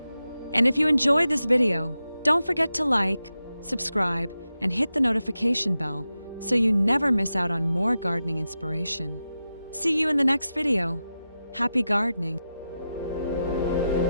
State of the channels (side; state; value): both; inverted; correlation -0.91